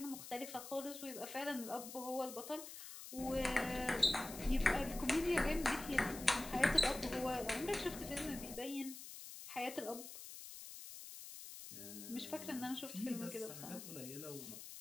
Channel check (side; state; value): left; noise; hiss, 11 dB below the sound